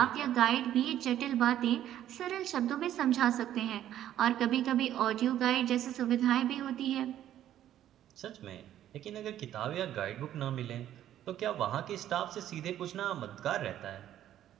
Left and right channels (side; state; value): left; quieter; 11.8 dB